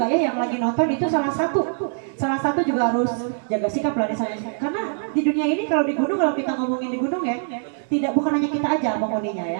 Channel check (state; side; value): silent; left; digital silence